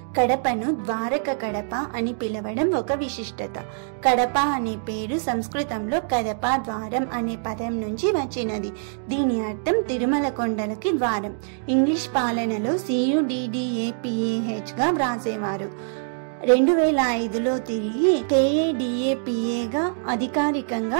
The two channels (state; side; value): silent; left; digital silence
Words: కడపను ద్వారక కడప అని పిలవడం ఒక విశిష్టత. కడప అనే పేరు సంస్కృతంలో కదప ద్వారం అనే పదం నుంచి వచ్చినది. దీని అర్థం తిరుమల కొండలకి ద్వారం. ఇంగ్లీష్ పాలనలో CUDDAPAH గా వ్రాసేవారు. 2005లో తిరిగి KADAPAగా అధికారికంగా